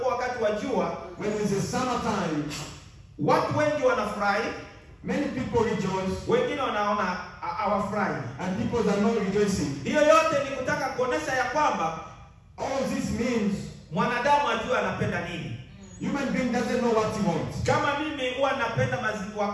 wakati wa jua, When it's the summertime, watu wengi wanafurahi, many people rejoice wengine wanaona hawafurahi. and people are not rejoicing. Hiyo yote ni kutaka kuonesha ya kwamba All this means mwanadamu ajue anapenda nini. human being doesn't know what he wants. Kama mimi huwa napenda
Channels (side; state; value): both; identical; correlation 1.00